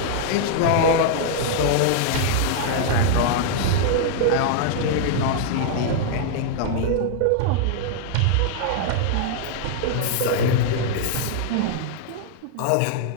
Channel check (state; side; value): different; both; correlation -0.01